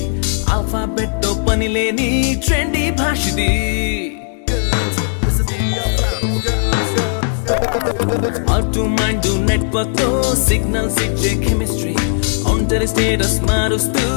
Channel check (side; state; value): right; silent; digital silence